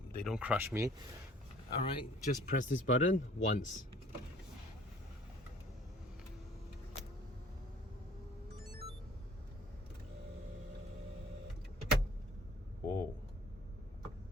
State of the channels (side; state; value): both; normal; correlation 0.53